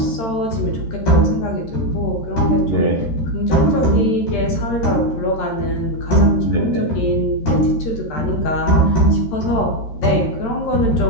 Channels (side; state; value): right; late; 13 ms